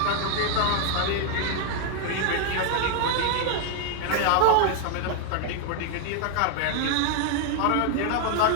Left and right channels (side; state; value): both; different; correlation 0.00